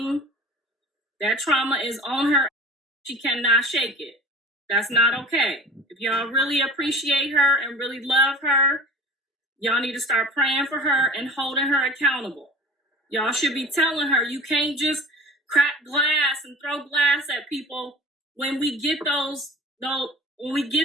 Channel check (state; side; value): normal; both; correlation 0.39